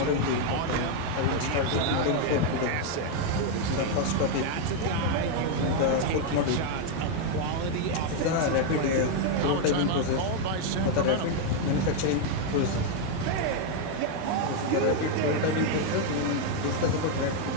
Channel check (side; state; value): both; different; correlation 0.01